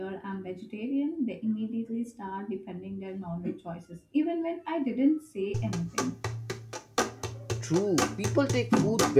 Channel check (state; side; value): identical; both; correlation 1.00